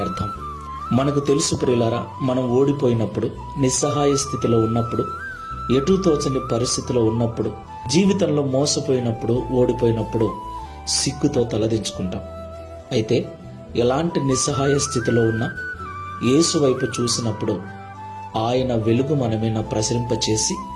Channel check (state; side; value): identical; both; correlation 1.00